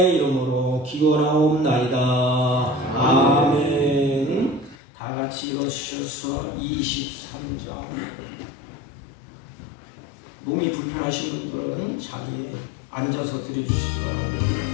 이름으로 기원하옵나이다. 아멘. 다 같이 일어서셔서 23장. 몸이 불편하신 분들은 자리에 앉아서 드려주시기 바랍니다.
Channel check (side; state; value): right; drops out; at 4.8 s